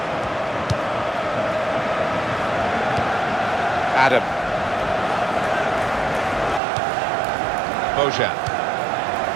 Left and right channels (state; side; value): drops out; left; at 6.6 s